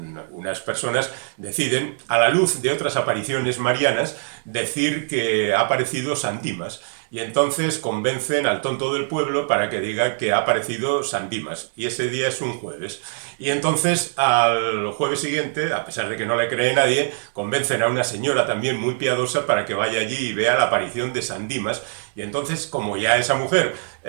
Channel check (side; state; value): left; silent; digital silence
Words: unas personas deciden, a la luz de otras apariciones marianas, decir que ha aparecido San Dimas. y entonces convencen al tonto del pueblo para que diga que ha aparecido San Dimas, y ese día es un jueves. Y entonces al jueves siguiente, a pesar de que no le cree nadie, convencen a una señora también muy piadosa para que vaya allí y vea la aparición de San Dimas, y entonces, como ya esa mujer